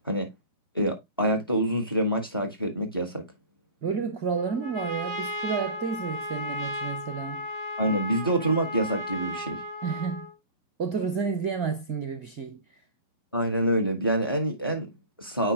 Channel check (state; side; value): inverted; both; correlation -0.39